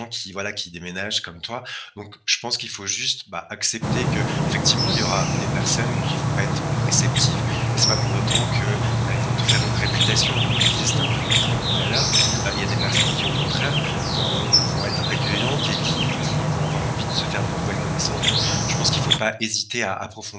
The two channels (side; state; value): both; identical; correlation 1.00